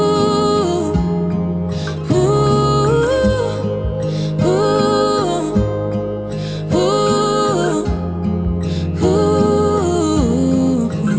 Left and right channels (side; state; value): both; identical; correlation 1.00